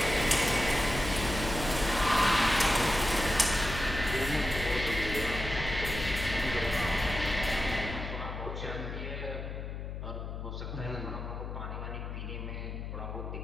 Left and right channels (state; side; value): noise; left; hum, 6 dB below the sound